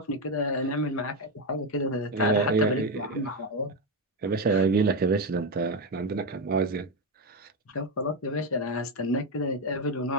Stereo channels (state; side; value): normal; both; correlation 0.10